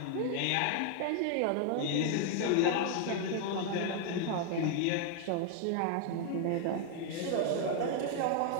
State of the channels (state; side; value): different; both; correlation 0.00